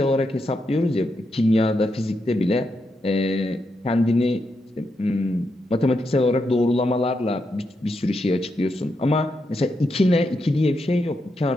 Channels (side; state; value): both; normal; correlation 0.83